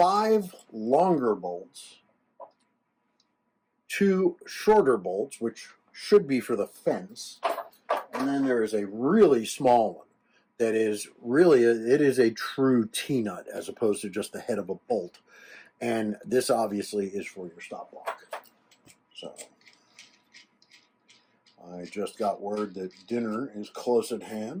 longer bolts, 2 shorter bolts, which should be for the fence, and then there is a really small one that is really, it is a true T-nut as opposed to just the head of a bolt. And this obviously is for your stop block. So I just got word that dinner is close at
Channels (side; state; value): both; identical; correlation 1.00